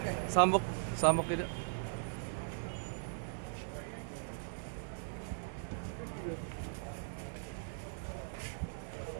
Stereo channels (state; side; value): silent; left; digital silence